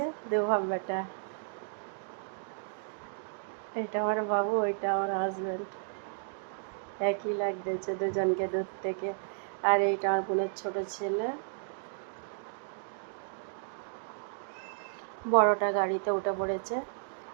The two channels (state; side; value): silent; left; digital silence